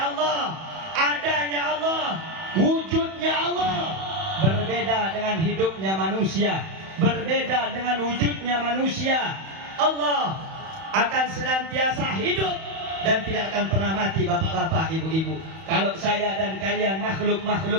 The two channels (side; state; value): left; late; 31 ms